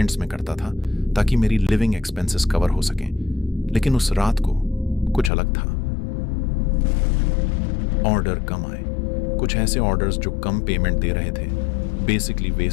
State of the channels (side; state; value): right; drops out; at 5.3 s